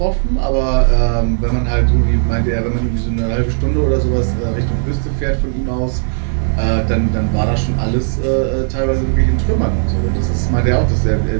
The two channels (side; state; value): left; silent; 62 dB below the other